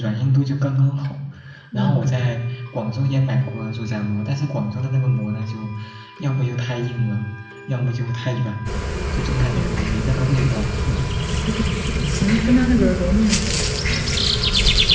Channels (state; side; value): identical; both; correlation 1.00